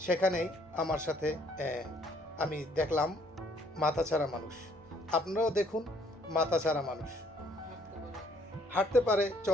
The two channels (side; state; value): both; normal; correlation 0.63